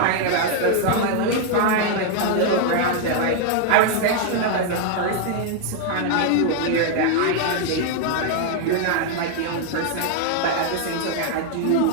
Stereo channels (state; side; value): different; both; correlation 0.00